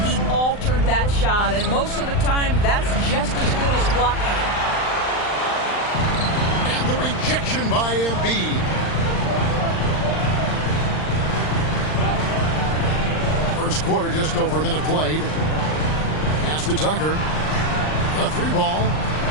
He altered that shot, and most of the time, that's just as good as blocking it. And the rejection by Embiid. First quarter, just over a minute played. Pass to Tucker. A three ball.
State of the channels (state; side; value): late; right; 39 ms